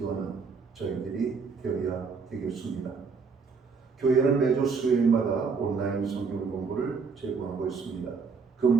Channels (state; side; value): quieter; left; 5.1 dB